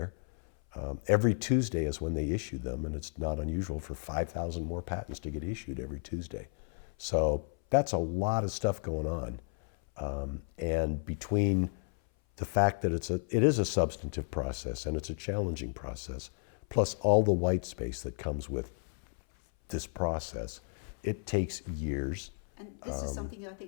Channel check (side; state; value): right; silent; 56 dB below the other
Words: Every Tuesday is when they issue them, and it's not unusual for 5,000 more patents to get issued every Tuesday. So that's a lot of stuff going on. And between the fact that it is a substantive process and it's a challenging process, plus all the white space that comes with this process, it takes years. And this is something I